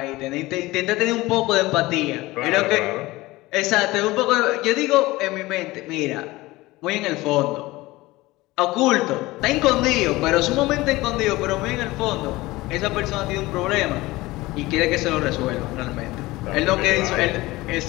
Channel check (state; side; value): quieter; right; 19.6 dB